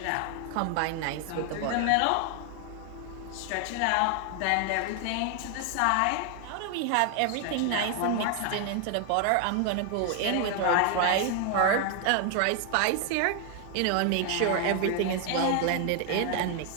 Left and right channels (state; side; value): different; both; correlation 0.00